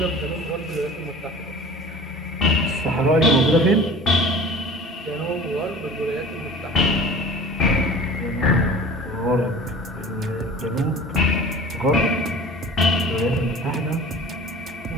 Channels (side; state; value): both; normal; correlation 0.42